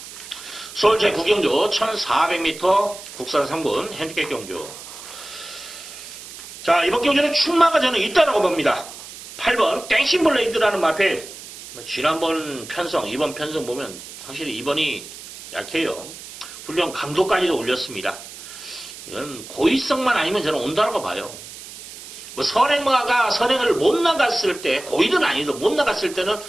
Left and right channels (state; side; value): noise; right; hiss, 14 dB below the sound